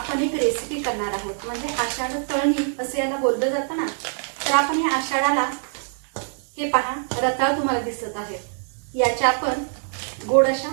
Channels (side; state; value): left; silent; digital silence